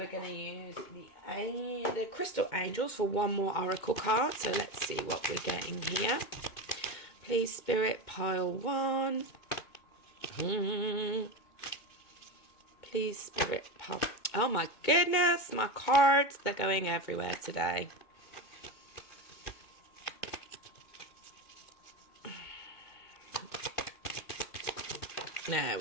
going to use the crystal angels for one more oracle card. So let's see what we're getting here. Please, Spirit, pile 1. Please, Spirit, pile. Oh my goodness, my cards, they're going everywhere today. There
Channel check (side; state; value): right; late; 2.2 ms